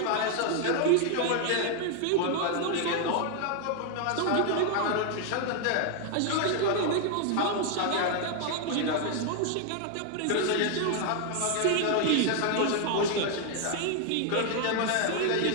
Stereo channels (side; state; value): both; different; correlation 0.00